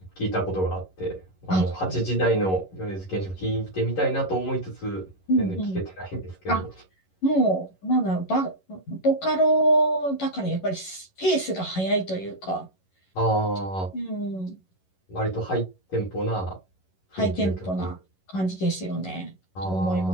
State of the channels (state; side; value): late; right; 11 ms